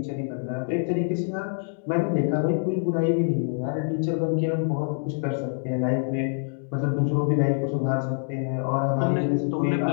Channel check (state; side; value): silent; right; digital silence